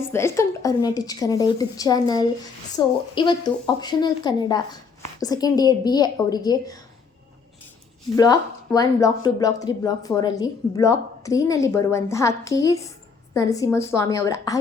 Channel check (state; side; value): quieter; right; 5.2 dB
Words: welcome to Aruna teach Kannada YouTube channel. So ಇವತ್ತು optional Kannada second year BA ಅವರಿಗೆ block 1, block 2, block 3, block 4ಅಲ್ಲಿ block 3ನಲ್ಲಿ ಬರುವಂತಹ KS Narasimhaswamy ಅವರ